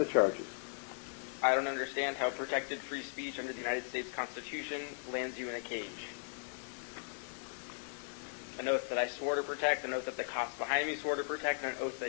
charges? I don't understand how protected free speech under the United States Constitution lands you in a cage. An oath that I swore to protect, an oath that the cops behind me swore to protect, and an oath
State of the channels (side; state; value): right; silent; digital silence